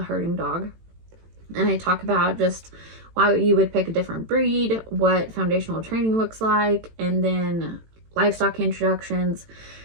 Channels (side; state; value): left; late; 18 ms